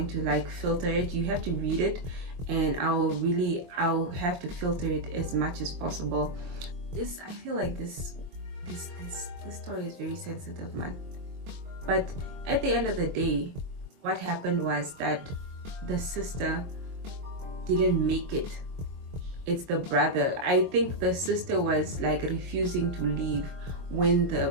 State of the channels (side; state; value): left; late; 23 ms